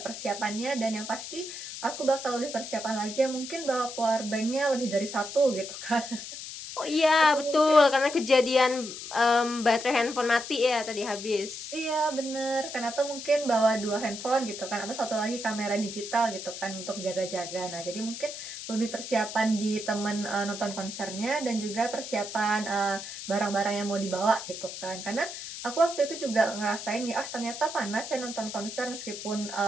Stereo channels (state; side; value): noise; left; hiss, 9 dB below the sound